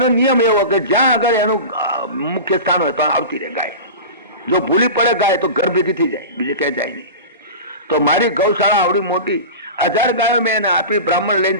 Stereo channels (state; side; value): inverted; both; correlation -0.30